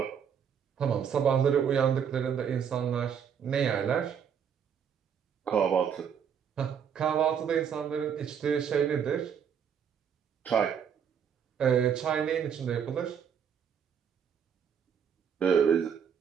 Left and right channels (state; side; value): quieter; left; 7.7 dB